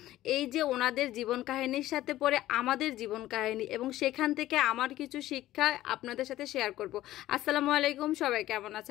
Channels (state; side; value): quieter; right; 14.9 dB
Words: এই যে ওনাদের জীবন কাহিনীর সাথে পরে আমাদের জীবন কাহিনী, এবং সেখান থেকে আমার কিছু শিক্ষা আপনাদের সাথে শেয়ার করব। আসসালামু আলাইকুম, সবাই কেমন